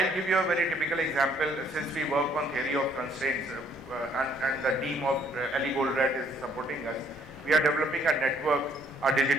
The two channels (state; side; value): normal; both; correlation 0.63